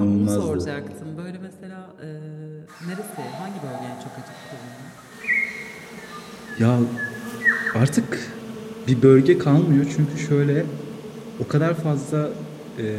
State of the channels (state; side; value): identical; both; correlation 1.00